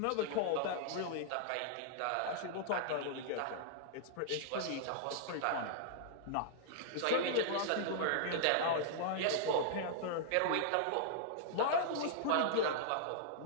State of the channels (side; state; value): both; different; correlation -0.01